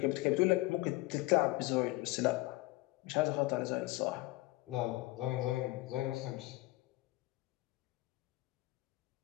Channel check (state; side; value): quieter; right; 20.2 dB